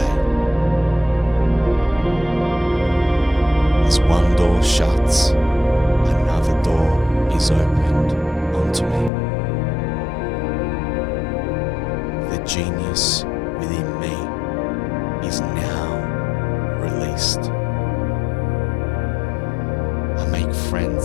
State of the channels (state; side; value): drops out; right; at 9.1 s